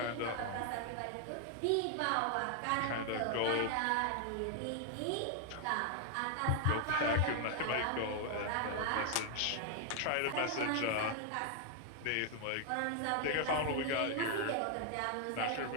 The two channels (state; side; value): different; both; correlation 0.00